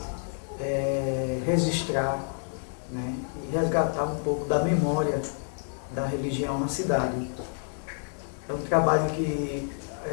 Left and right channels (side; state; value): right; silent; 59 dB below the other